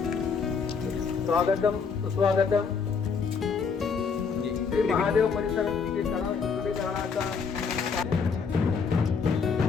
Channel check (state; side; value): quieter; right; 5.6 dB